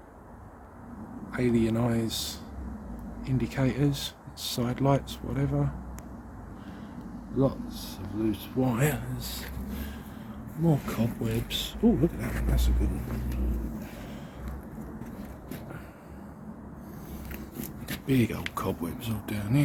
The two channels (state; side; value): identical; both; correlation 1.00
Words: alien eyes indicators, side lights, whatever. Lots of loose wires. More cobwebs. Oh, look at that one, that's a good one. Big old cobwebs all down